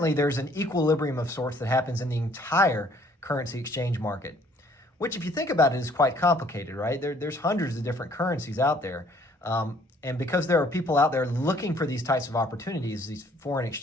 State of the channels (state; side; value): normal; both; correlation 0.61